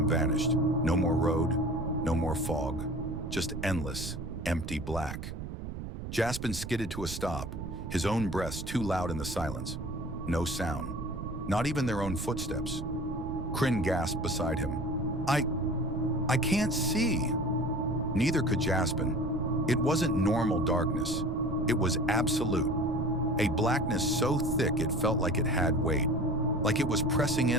vanished. No more road, no more fog, just endless, empty black. Jaspen skidded to a stop, his own breaths too loud in the silence. No sound, not even their own footsteps. Krynn gasped beside him. I can't see. Neither could Jaspen. It wasn't normal darkness. It was absolute. A blackness so thick it felt like it had weight, like it was pressing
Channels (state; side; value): noise; right; rumble, 7 dB below the sound